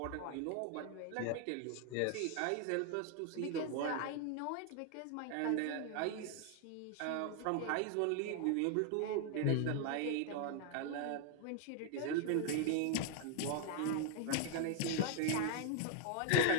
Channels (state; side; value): different; both; correlation 0.00